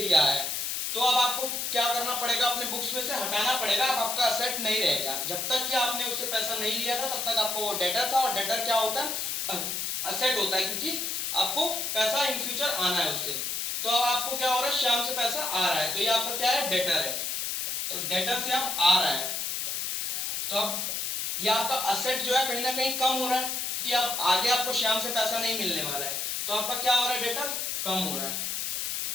है, तो अब आपको क्या करना पड़ेगा, अपने बुक्स में से हटाना पड़ेगा, अब आपका असेट नहीं रहेगा। जब तक कि आपने उससे पैसा नहीं लिया था तब तक आपको वो डेटर था, और डेटर क्या होता है, असेट होता है, क्योंकि आपको पैसा इन फ्यूचर आना है उससे। तो अब आपको क्या हो रहा है, श्याम से पैसा आ रहा है, तो ये आपका क्या है, डेटर है, तो डेटर से आप आ रहा है, तो अब ये आपका असेट जो है कहीं ना कहीं कम हो रहा है, कि अब आगे आपको श्याम से पैसा नहीं मिलने वाला है, तो आपका क्या हो रहा है, डेटर कम हो रहा है,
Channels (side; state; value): left; noise; hiss, 1 dB below the sound